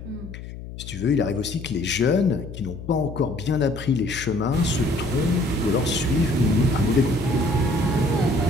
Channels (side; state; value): left; noise; hum, 12 dB below the sound